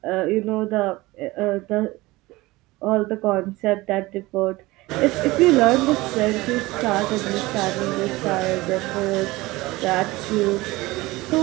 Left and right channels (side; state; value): left; quieter; 20.3 dB